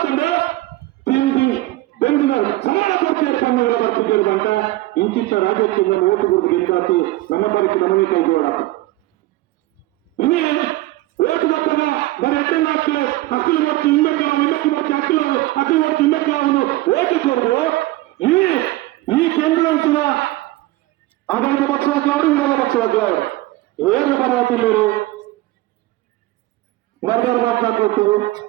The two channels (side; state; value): left; quieter; 18.0 dB